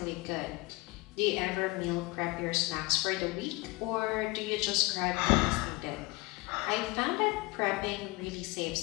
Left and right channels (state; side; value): quieter; right; 24.0 dB